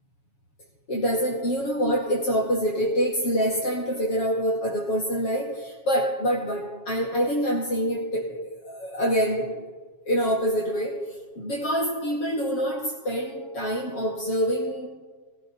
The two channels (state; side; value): late; right; 7.3 ms